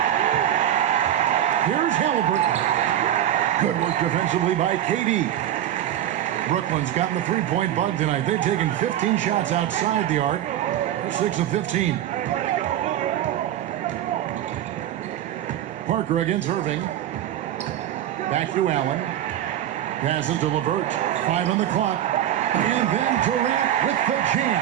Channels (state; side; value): quieter; left; 11.5 dB